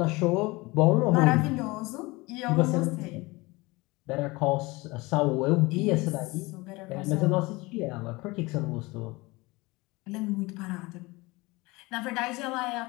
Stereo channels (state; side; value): quieter; right; 23.0 dB